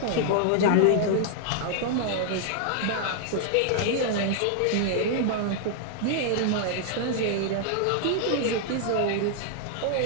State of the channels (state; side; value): different; both; correlation -0.01